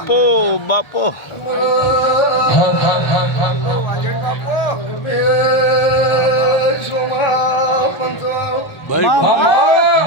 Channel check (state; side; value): late; right; 1.3 ms